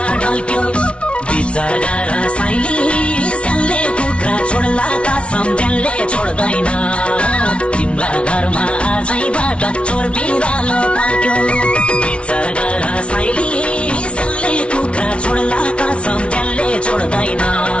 ढल्क्यो विचार गर साइली सल्ले कुखुरा छोड्ला कसम त्यसले छोड्दैन तिम्रा घरमा आजैबाट चोर बिरालो बल्क्यो विचार गर साइली सल्ले कुखुरा छोड्ला कसम त्यसले छोड्दैन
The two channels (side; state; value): right; late; 0.060 ms